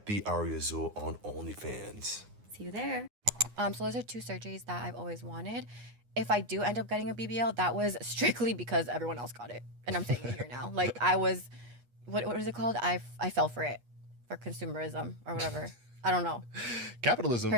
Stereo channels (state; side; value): late; left; 9.7 ms